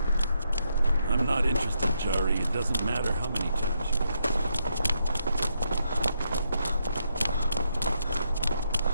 I'm not interested, Jari. It doesn't matter how many times you ask.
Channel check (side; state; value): both; inverted; correlation -0.78